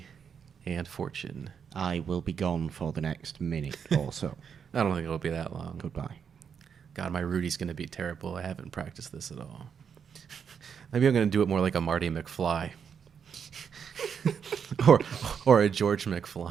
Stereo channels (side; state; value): left; quieter; 7.1 dB